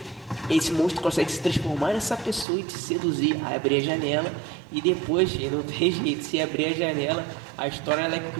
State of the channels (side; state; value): left; drops out; at 2.5 s